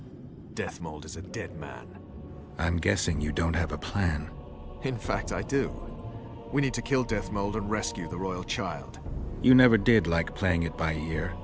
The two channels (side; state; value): both; identical; correlation 1.00